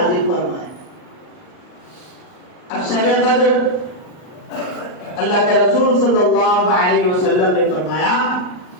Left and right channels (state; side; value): late; right; 39 ms